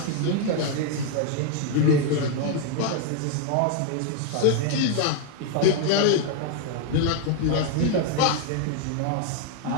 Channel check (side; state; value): both; different; correlation 0.01